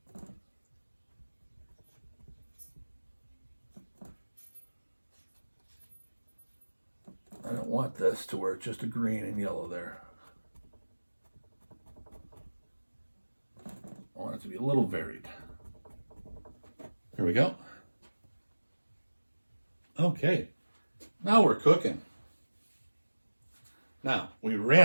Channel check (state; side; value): inverted; both; correlation -1.00